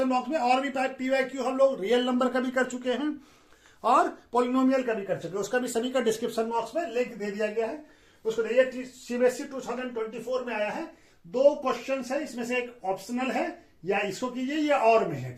बॉक्स में। और भी PYQ हम लोग रियल नंबर का भी कर चुके हैं और पॉलिनोमियल का भी कर चुके हैं। उसका भी सभी का डिस्क्रिप्शन बॉक्स में लिंक दे दिया गया है। उसको देखिए, CBSE 2024 में आया है। 2 क्वेश्चन है, इसमें से एक ऑप्शनल है, या इसको कीजिए या और में है,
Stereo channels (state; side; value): identical; both; correlation 1.00